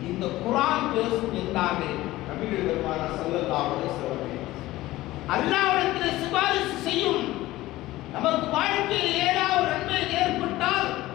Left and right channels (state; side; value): quieter; right; 17.1 dB